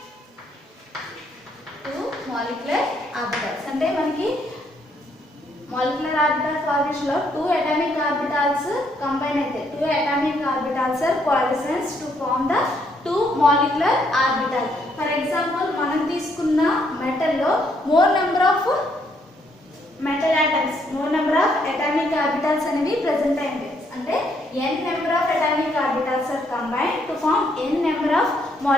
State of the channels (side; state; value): both; normal; correlation 0.72